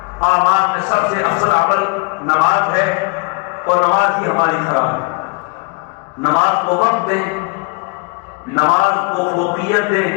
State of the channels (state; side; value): quieter; right; 30.3 dB